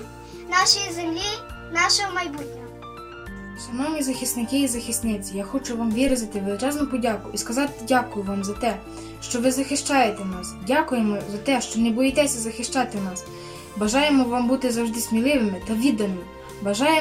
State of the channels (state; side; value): identical; both; correlation 1.00